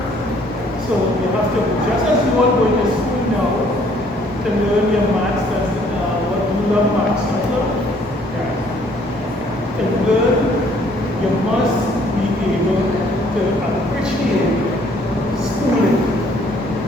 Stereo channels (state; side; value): noise; right; rumble, 21 dB below the sound